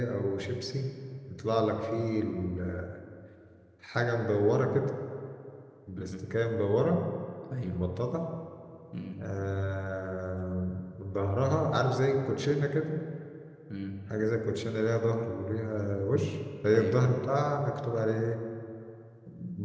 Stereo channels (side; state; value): both; identical; correlation 1.00